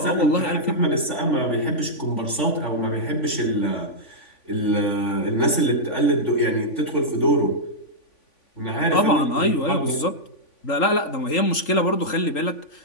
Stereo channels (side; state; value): right; late; 3.5 ms